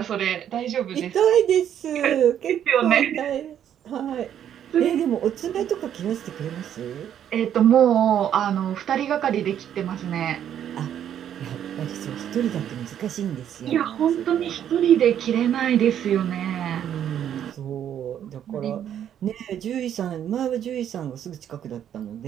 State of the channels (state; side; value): quieter; left; 9.9 dB